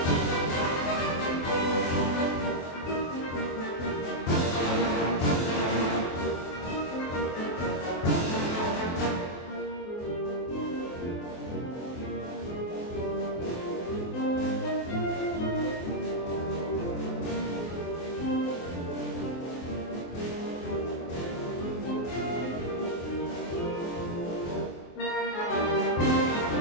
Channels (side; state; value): right; late; 24 ms